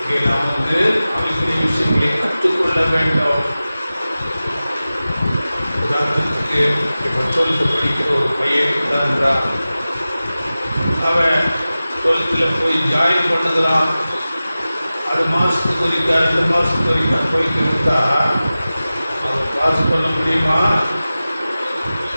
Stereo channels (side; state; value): both; inverted; correlation -0.96